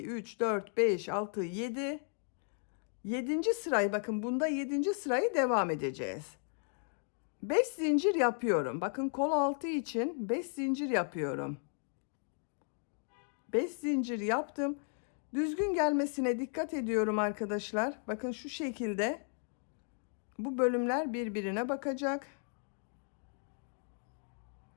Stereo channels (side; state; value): right; silent; 54 dB below the other